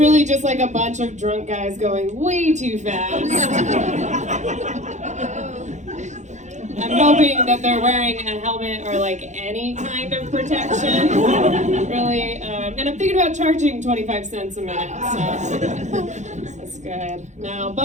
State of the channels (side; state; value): left; late; 0.34 ms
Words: just like a bunch of drunk guys going way too fast. I'm hoping that they're wearing a helmet or like any kind of protection, really. And I'm thinking about charging 25 cents a minute, so that's good. Now,